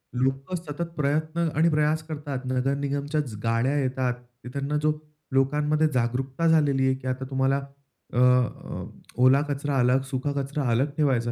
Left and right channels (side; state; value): both; identical; correlation 1.00